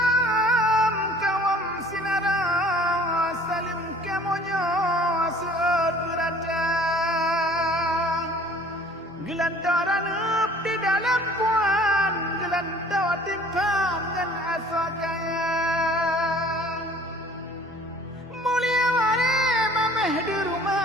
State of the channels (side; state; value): both; normal; correlation 0.51